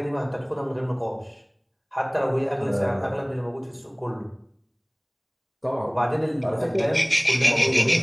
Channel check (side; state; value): both; identical; correlation 1.00